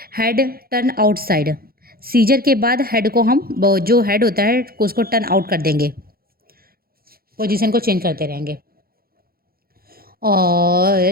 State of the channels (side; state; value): left; late; 0.44 ms